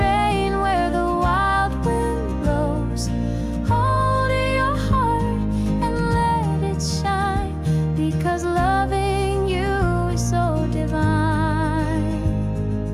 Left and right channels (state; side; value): identical; both; correlation 1.00